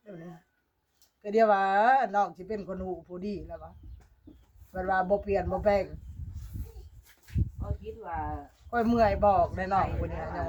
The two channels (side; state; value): both; identical; correlation 1.00